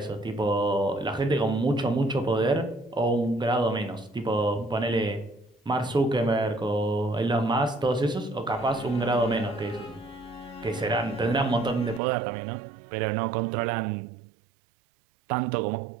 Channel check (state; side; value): drops out; left; at 12.0 s